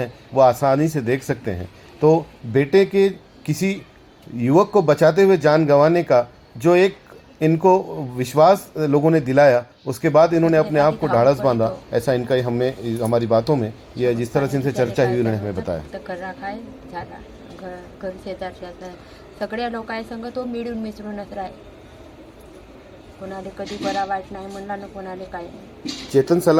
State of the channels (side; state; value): both; identical; correlation 1.00